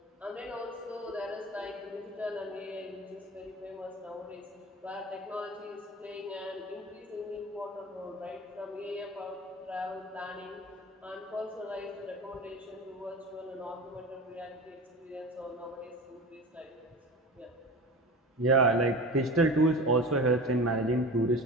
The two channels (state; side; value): normal; both; correlation 0.33